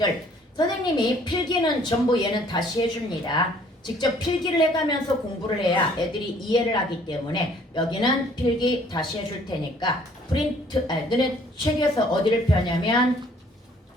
선생님이 필기는 전부 얘는 다시 해줍니다. 직접 필기를 해가면서 공부를 해야 애들이 이해를 하기 때문에 여기는 필기 다시 해줄 테니까 프린트 너네 책에서 어디를 펴냐면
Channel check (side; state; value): both; normal; correlation 0.59